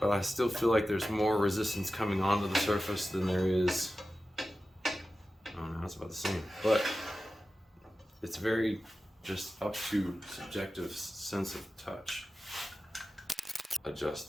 but I still feel like there's more resistance coming onto the surface than there is. Oh no, it's about the same. But it's very just up to subjective sense of touch.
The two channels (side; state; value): both; normal; correlation 0.94